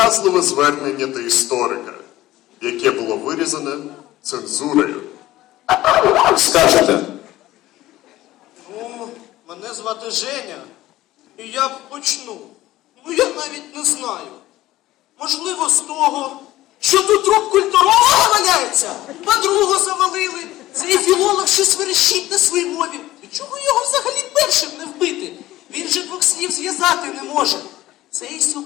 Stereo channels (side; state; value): right; quieter; 16.0 dB